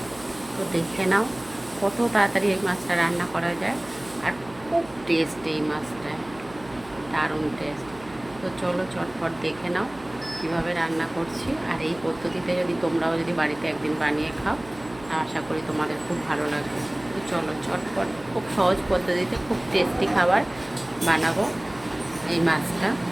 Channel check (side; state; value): right; noise; hum, 21 dB below the sound